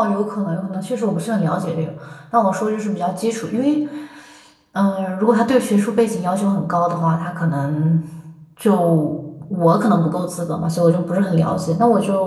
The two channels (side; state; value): both; identical; correlation 1.00